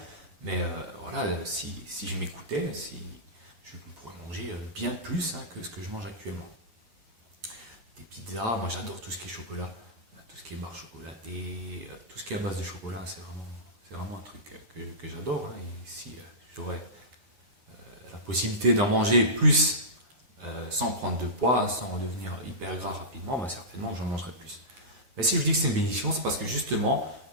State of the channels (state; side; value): late; left; 9.5 ms